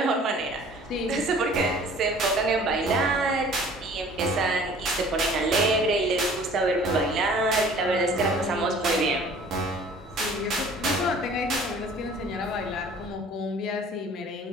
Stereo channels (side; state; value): both; normal; correlation 0.50